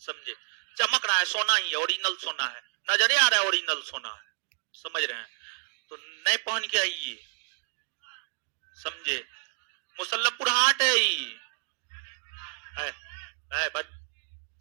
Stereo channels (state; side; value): silent; left; digital silence